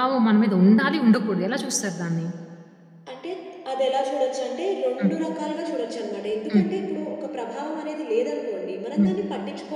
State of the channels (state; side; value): identical; both; correlation 1.00